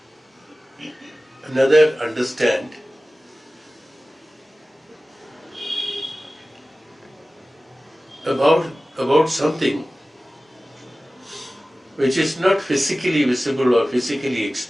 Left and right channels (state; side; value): normal; both; correlation 0.96